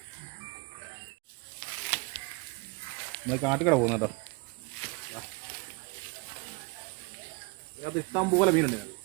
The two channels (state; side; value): quieter; left; 28.3 dB